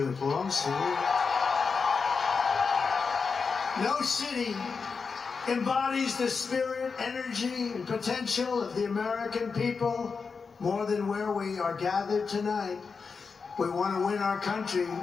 It belongs to you. No city embodies the spirit, energy, and potential of the American people more than where we are gathered tonight. We want to win our country,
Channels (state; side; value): quieter; right; 5.1 dB